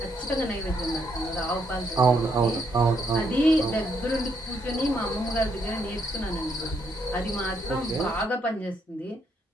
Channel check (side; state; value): both; normal; correlation 0.74